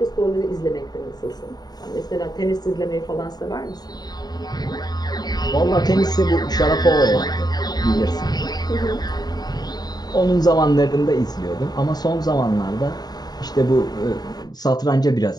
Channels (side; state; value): right; late; 0.19 ms